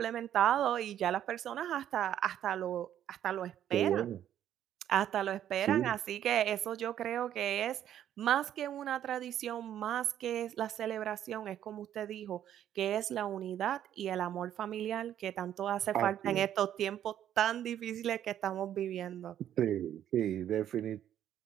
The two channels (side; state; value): left; quieter; 10.8 dB